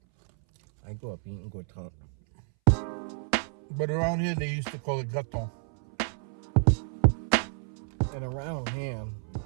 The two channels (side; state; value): left; silent; 58 dB below the other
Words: I grew up eating croissant. but around here, they used to call it gâteau. And around here,